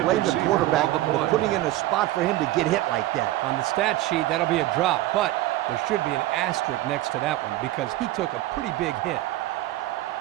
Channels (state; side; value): quieter; left; 16.1 dB